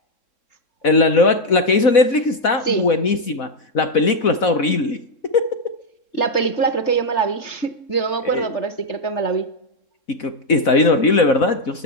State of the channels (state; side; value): late; right; 4.1 ms